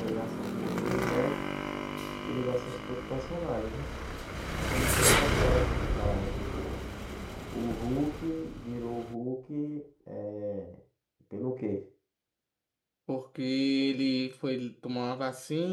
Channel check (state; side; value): identical; both; correlation 1.00